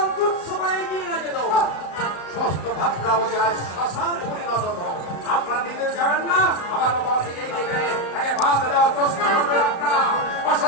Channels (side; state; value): right; late; 35 ms